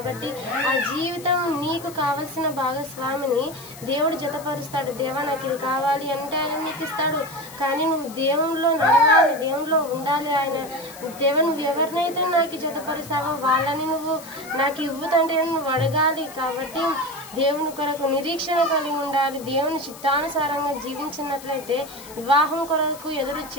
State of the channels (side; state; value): left; noise; hiss, 17 dB below the sound